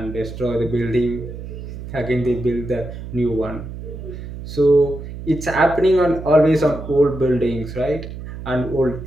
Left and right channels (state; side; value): noise; right; hum, 10 dB below the sound